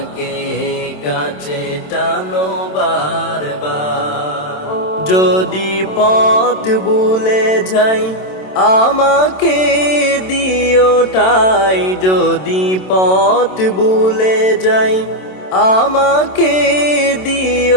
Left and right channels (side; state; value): right; late; 27 ms